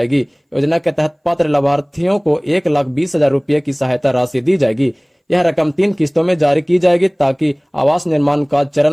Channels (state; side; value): identical; both; correlation 1.00